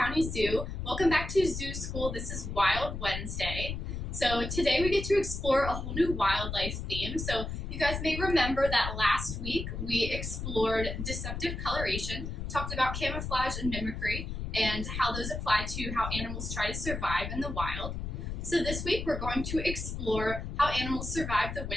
Zoo. Welcome back to Zoo School. This is Wild Wednesday. So today we get to explore a whole new wildlife theme. So you guys may remember that last week we explored deceptive coloration, talked about camouflage and mimicry, and how those apply to how animals try to survive in the wild. So this week we're going to explore how animals survive the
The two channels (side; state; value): left; noise; rumble, 5 dB below the sound